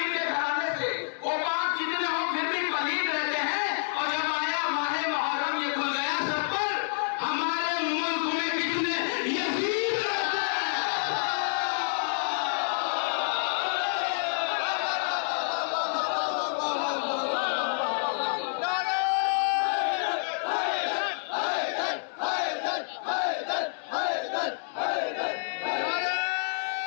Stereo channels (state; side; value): silent; right; 59 dB below the other